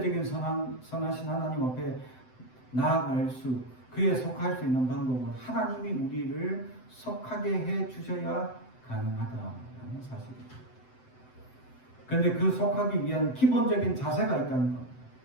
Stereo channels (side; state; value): right; late; 7.9 ms